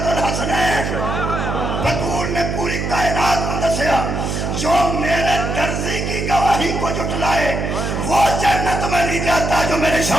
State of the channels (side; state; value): right; noise; hum, 2 dB below the sound